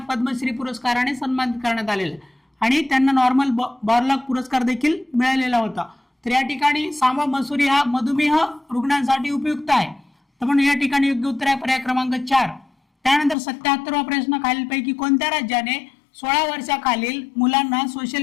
पद्मश्री पुरस्काराने सन्मानित करण्यात आलेला आहे आणि त्यांना नॉर्मल बॉरलॉग पुरस्कार देखील मिळालेला होता. तर या ठिकाणी सांबा मसुरी हा मधुमेह रुग्णांसाठी उपयुक्त आहे, तर म्हणून या ठिकाणी योग्य उत्तर आहे पर्याय क्रमांक 4. त्यानंतर 77वा प्रश्न, खालीलपैकी कोणत्या राज्याने 16 वर्षाखालील मुलांना सोशल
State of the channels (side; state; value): right; drops out; at 13.4 s